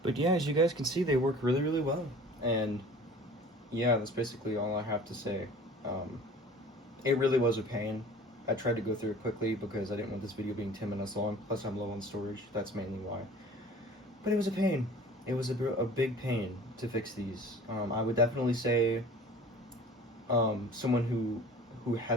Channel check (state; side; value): normal; both; correlation 0.45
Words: But yeah, as you guys can see, they work really, really well. And yeah, that's basically all I have to say. It really was a pain. I tried to go through it quickly because I didn't want this video being 10 minutes long. Plus, I'm low on storage. That's mainly why. But it was a pain. It was a big pain to fix these. I would definitely say someone who